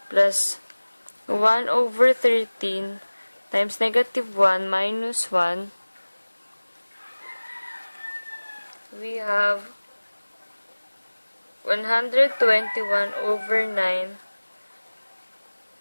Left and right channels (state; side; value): inverted; both; correlation -1.00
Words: plus 1 over 13 times negative 1 minus 1. We have 121 over 9